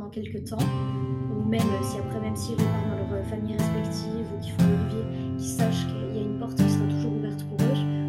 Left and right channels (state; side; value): identical; both; correlation 1.00